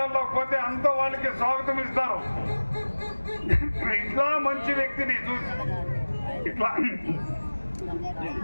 పోతే అంత వాళ్ళకి స్వాగతం ఇస్తారు. ఇట్లా మంచి వ్యక్తిని చూసి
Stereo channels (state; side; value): inverted; both; correlation -1.00